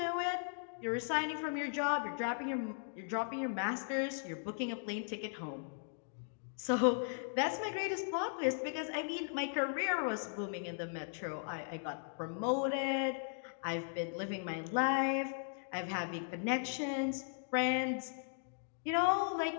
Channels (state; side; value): silent; right; digital silence